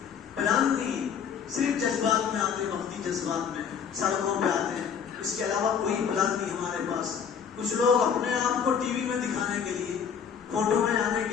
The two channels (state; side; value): quieter; right; 7.3 dB